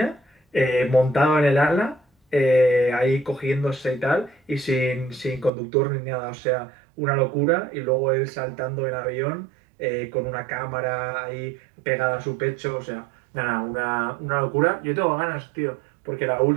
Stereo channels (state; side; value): drops out; left; at 5.5 s